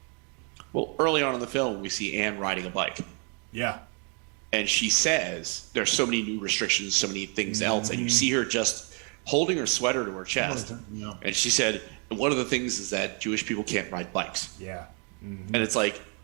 Well, early on in the film, we see Anne riding a bike. Yeah. And she says there's so many new restrictions, so many things else, and you see her just holding her sweater to her chest. Yeah. And she said, one of the things is that Jewish people can't ride bikes. Yeah. Mm-hmm. And it's like,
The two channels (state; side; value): quieter; left; 37.4 dB